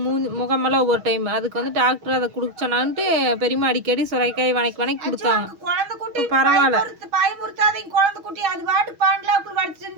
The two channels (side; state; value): left; late; 6.2 ms